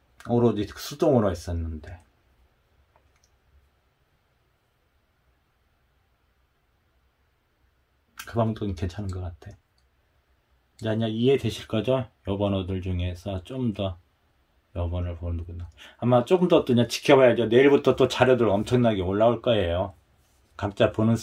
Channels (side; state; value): both; identical; correlation 1.00